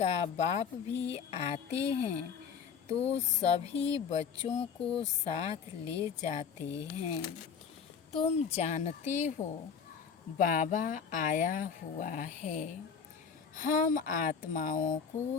बाप भी आते हैं तो सभी बच्चों को साथ ले जाते हैं। तुम जानते हो बाबा आया हुआ है। हम आत्माओं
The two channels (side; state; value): right; quieter; 6.7 dB